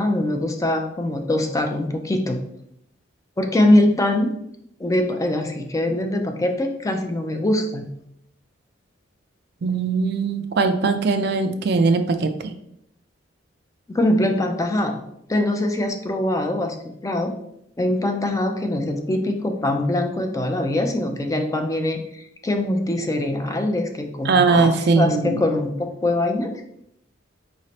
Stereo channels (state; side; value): normal; both; correlation 0.64